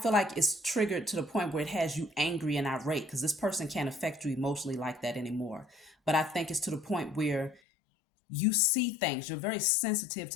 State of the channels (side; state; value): right; drops out; at 7.6 s